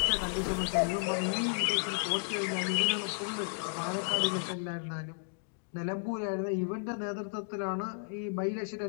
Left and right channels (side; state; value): right; silent; digital silence